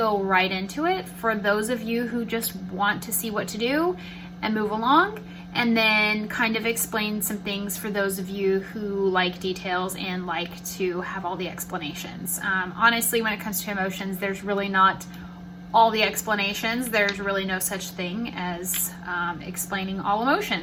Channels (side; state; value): both; identical; correlation 1.00